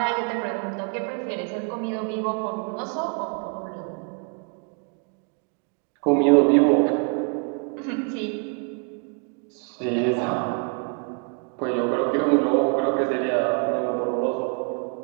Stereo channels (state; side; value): quieter; left; 37.6 dB